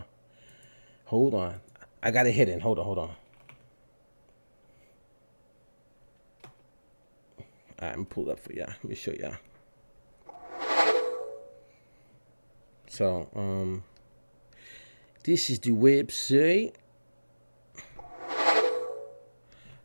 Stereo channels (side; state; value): both; inverted; correlation -1.00